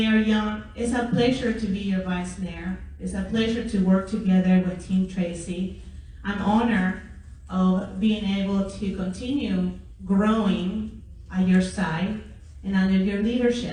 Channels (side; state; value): both; identical; correlation 1.00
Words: Young, it's a pleasure to be your vice mayor. It's a pleasure to work together with Team Tracy. I'm honored of being able to continue growing at your side and under your